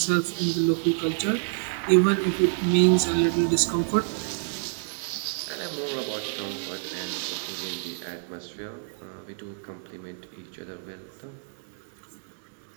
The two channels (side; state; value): left; silent; digital silence